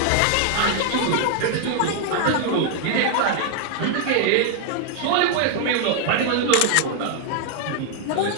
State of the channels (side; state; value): both; different; correlation 0.00